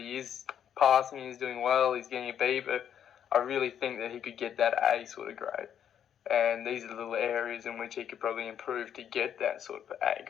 is passing, he's doing well, he's getting a B, but I really think that he could get that A sort of grade. And these are the little areas in which he could probably improve to get that sort of A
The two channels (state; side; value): quieter; right; 9.2 dB